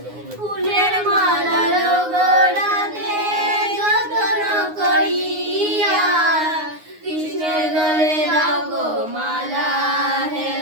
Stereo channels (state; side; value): late; left; 9.6 ms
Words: ফুলের মালা গড়াতে যত্ন করিয়া কৃষ্ণের গলে দাও গো মালা